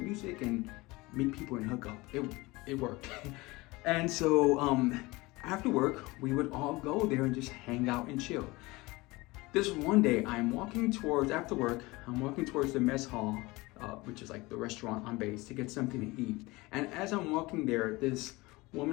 music and meet people and hook up. It worked. And so after work, we would all go there and just hang out and chill. This one day, after work, I'm walking towards the mess hall, which is like the restaurant on base, to get something to eat. And as I'm walking there, this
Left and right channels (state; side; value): quieter; right; 22.2 dB